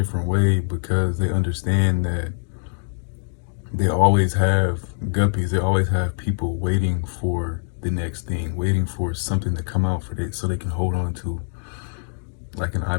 way because they understand that they always have guppies, they always have people waiting for the next thing, waiting for something to come out for it so they can hold on to, like an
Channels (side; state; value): right; silent; digital silence